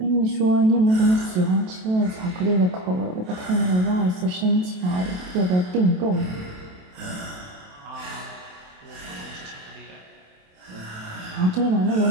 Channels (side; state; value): left; late; 28 ms